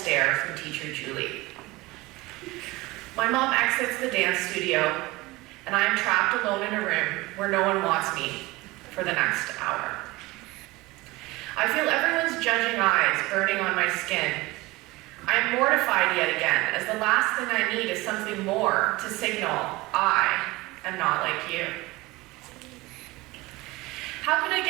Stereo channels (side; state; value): left; quieter; 21.2 dB